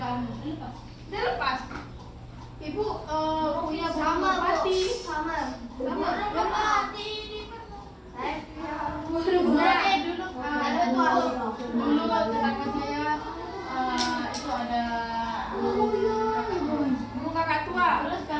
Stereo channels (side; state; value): both; identical; correlation 1.00